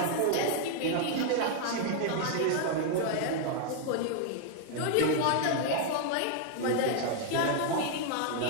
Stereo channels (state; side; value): different; both; correlation 0.00